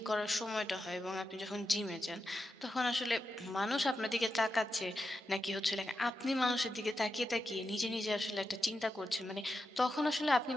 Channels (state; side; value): normal; both; correlation 0.89